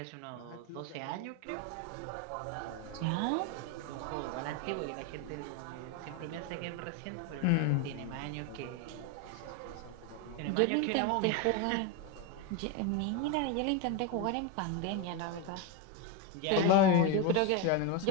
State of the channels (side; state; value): both; different; correlation 0.03